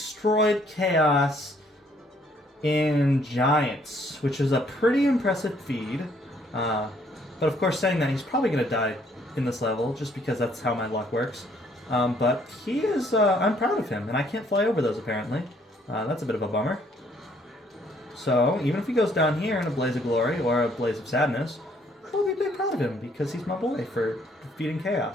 Chaos in Giants, which is a pretty impressive feat. But of course, saying that, he's probably going to die in this level, just because that's how my luck works. But he is, I'm proud of him, and I can't fly over those, apparently. That's a bit of a bummer. So, even if he goes down here in a blaze of glory, or a blaze of sadness, I'll be proud of him, because he's my boy for defeating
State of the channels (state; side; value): normal; both; correlation 0.65